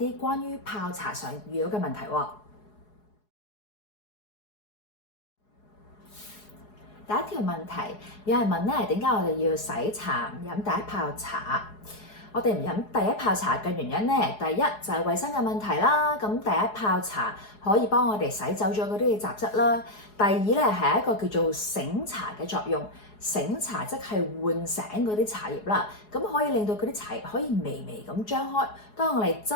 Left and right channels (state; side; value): late; right; 4.8 ms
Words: 關於泡茶上遇到嘅問題喎。第一條問題，有人問咧，點解我哋要洗茶唔飲第一泡茶？我哋唔飲第一泡茶嘅原因咧，第一就係衞生嘅問題啦。咁第一泡茶可以幫我哋洗走咗嗰啲嘅雜質啦。第二咧係一個叫做醒茶嘅作用，醒茶即係喚醒嗰啲茶葉啦。咁可以令到嗰啲茶葉可以微微咁張開。當我哋